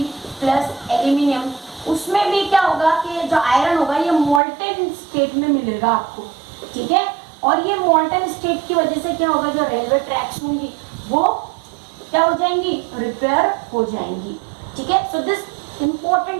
प्लस एल्यूमिनियम, उसमें भी क्या होगा कि जो आयरन होगा ये मोल्टन स्टेट में मिलेगा आपको, ठीक है। और ये मोल्टन स्टेट की वजह से क्या होगा, जो रेलवे ट्रैक्स होंगी वो क्या हो जाएंगी, रिपेयर हो जाएंगी, ठीक है। So this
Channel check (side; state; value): left; drops out; at 4.4 s